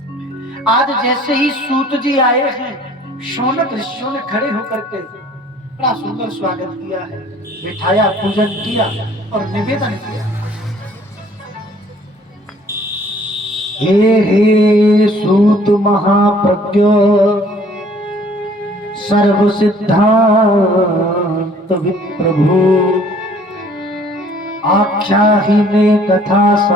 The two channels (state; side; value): normal; both; correlation 0.56